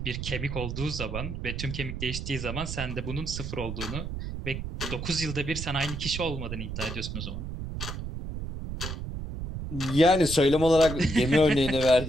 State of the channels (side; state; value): right; noise; rumble, 6 dB below the sound